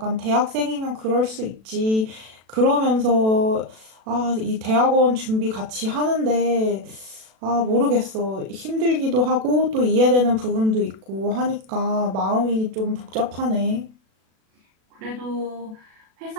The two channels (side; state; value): left; late; 37 ms